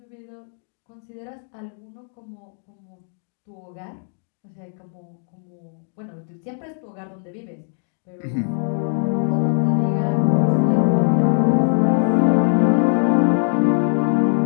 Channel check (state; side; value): silent; right; digital silence